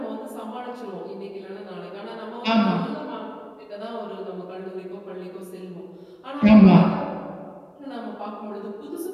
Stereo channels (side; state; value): both; identical; correlation 1.00